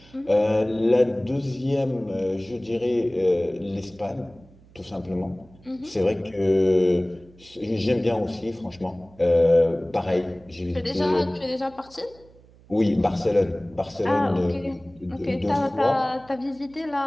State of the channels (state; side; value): noise; right; hum, 26 dB below the sound